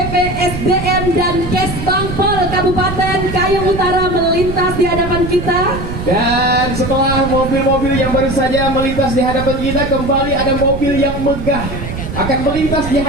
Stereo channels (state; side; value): noise; right; rumble, 7 dB below the sound